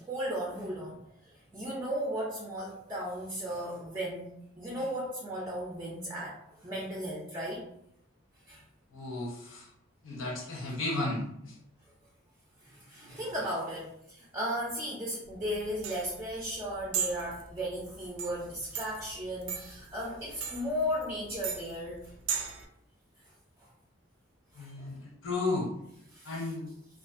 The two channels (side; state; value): both; normal; correlation 0.28